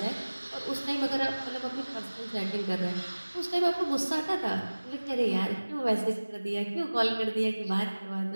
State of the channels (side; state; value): both; inverted; correlation -1.00